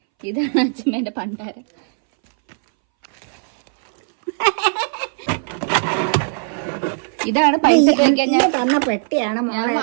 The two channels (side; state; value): left; silent; 64 dB below the other